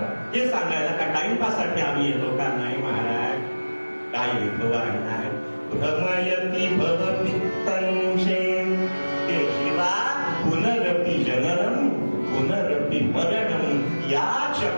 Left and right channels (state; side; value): inverted; both; correlation -1.00